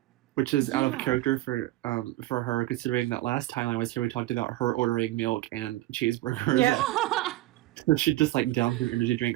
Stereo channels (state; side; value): quieter; left; 17.1 dB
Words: which is out of Yeah. character for her, considering that last time I was here we talked about her ordering milk and cheeseburgers. Yeah. So she just downs her energy